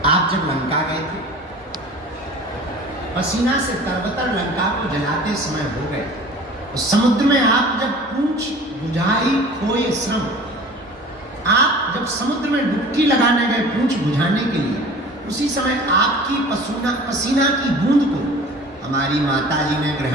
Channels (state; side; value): normal; both; correlation 0.43